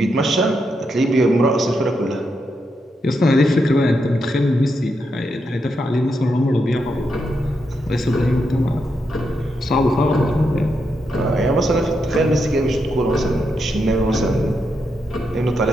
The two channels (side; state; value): both; normal; correlation 0.83